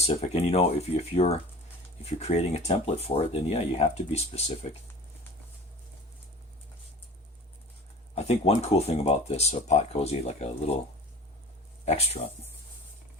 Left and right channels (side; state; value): both; normal; correlation 0.41